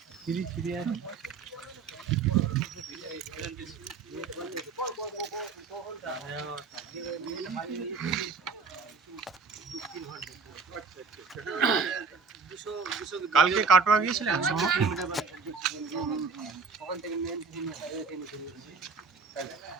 ফিরি ফিরি আছে। কালকে কাটোয়া গিয়েছিলেন? ওখান থেকে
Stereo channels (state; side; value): quieter; left; 5.0 dB